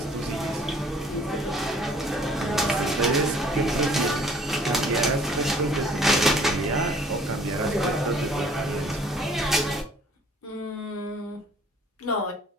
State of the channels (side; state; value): both; normal; correlation 0.56